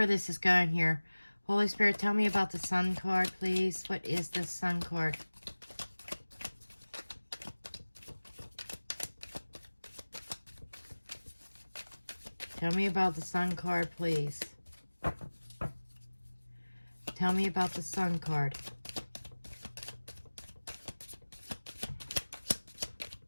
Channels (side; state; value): both; inverted; correlation -1.00